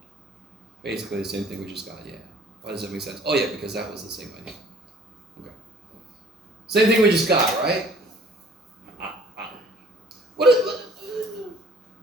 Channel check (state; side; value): normal; both; correlation 0.54